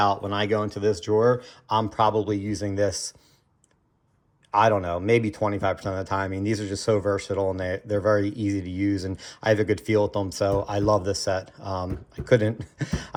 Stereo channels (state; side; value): identical; both; correlation 1.00